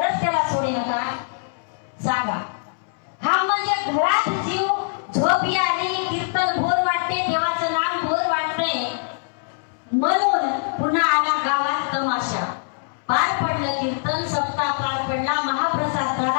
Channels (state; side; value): silent; right; 63 dB below the other